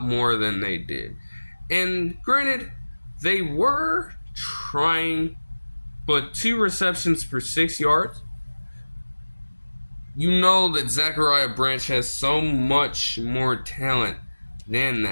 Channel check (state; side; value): inverted; both; correlation -1.00